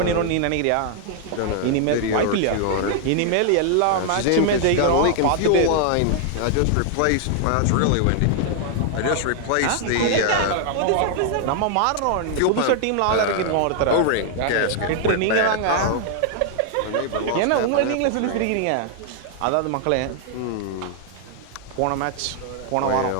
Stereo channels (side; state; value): both; different; correlation 0.00